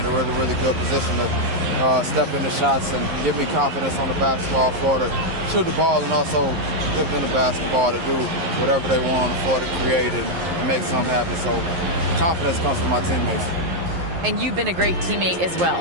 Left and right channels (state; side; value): late; left; 11 ms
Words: a really, really good position to step into shots and give me confidence on the basketball floor to shoot the ball, and also give them the basketball to do whatever they want on the floor to create and make something happen. So confidence comes from my teammates. And you've been a great teammate as